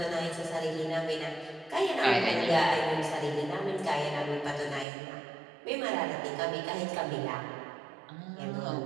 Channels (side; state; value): left; drops out; at 4.9 s